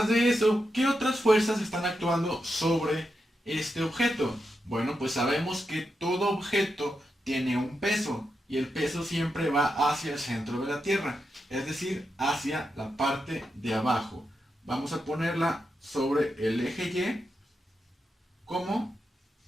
de eso, ¿qué otras fuerzas están actuando sobre este objeto? Bueno, pues sabemos que todo objeto tiene un peso y el peso siempre va hacia el centro de la Tierra, es decir, hacia la parte de abajo. Vamos a ponerla sobre el eje Y como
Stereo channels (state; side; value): normal; both; correlation 0.87